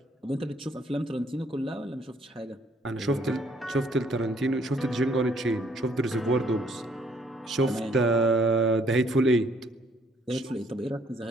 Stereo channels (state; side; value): normal; both; correlation 0.65